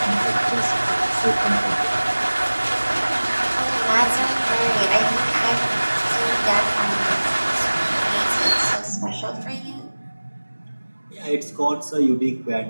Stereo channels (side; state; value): both; inverted; correlation -1.00